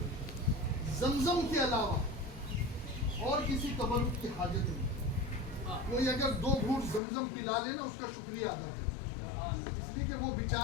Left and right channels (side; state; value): right; drops out; at 7.0 s